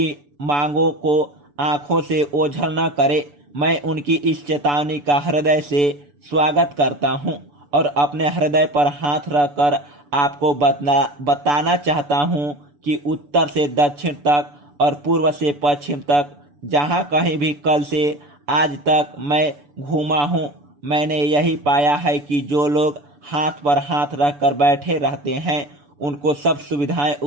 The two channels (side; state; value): left; late; 6.9 ms